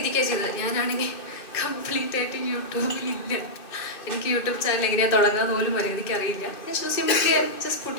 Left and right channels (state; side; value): late; right; 2.7 ms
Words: ചെയ്തത്. ഞാനാണെങ്കിൽ കംപ്ലീറ്റ് ആയിട്ട് യൂട്യൂബിലില്ല. എനിക്ക് യൂട്യൂബ് ചാനൽ എങ്ങനെയാണ് തുടങ്ങാന്ന് പോലും മര്യാദയ്ക്ക് അറിയില്ല. ഞാൻ simply just